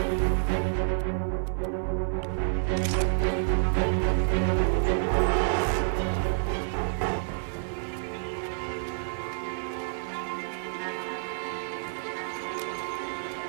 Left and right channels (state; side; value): silent; left; digital silence